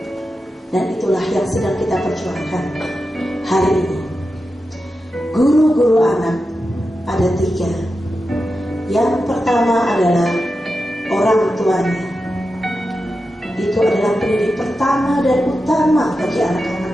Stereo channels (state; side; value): normal; both; correlation 0.90